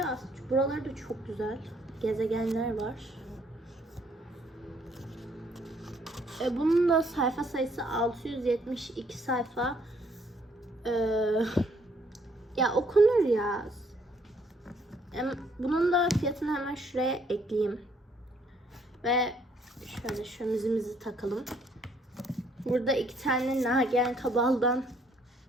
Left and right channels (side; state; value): both; normal; correlation 0.66